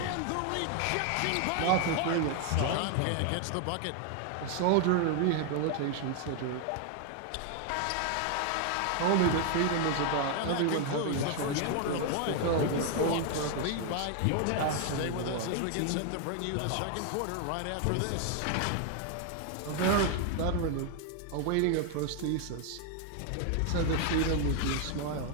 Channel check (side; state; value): both; different; correlation 0.00